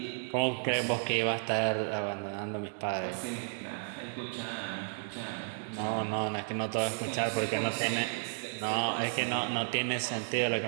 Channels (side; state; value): left; silent; digital silence